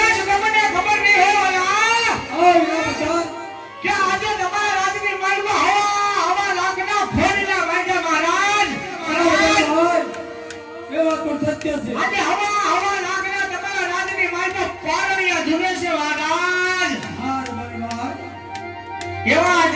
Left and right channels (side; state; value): both; identical; correlation 1.00